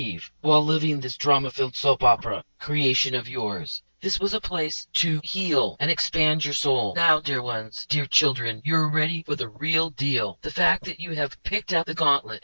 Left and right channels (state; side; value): inverted; both; correlation -1.00